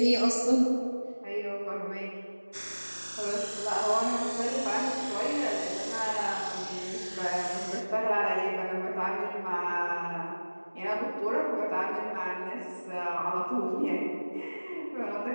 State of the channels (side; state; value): both; inverted; correlation -1.00